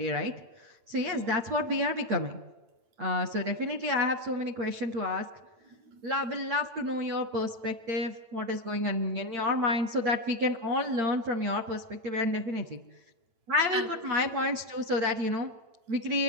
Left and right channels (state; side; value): late; left; 8.8 ms